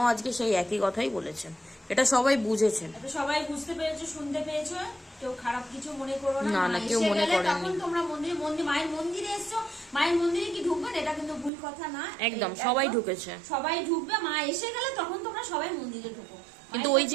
আজকে সেই একই কথাই বলেছেন। এটা সবাই বুঝেছেন, এটা সবাই বুঝতে পেরেছো, শুনতে পেয়েছো, কেউ খারাপ কিছু মনে করো না। না, মা কেউ এসে মনে গেলে করেননি। তখন তোমরা মায়ের মন্দিরে এসছো, মায়ের মন্দিরে কি ঢুকবেন, এটা কিন্তু ভুল কথা না। একদম সবাই ঢুকেছে, সবাই ঢুকবে। মা এসে গেলে তখন তোমরা সবাই মন্দিরে ঢুকো, কিন্তু ওই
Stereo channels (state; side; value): drops out; left; at 11.5 s